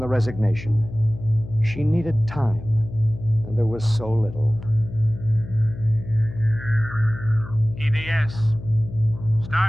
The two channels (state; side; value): noise; left; hum, 12 dB below the sound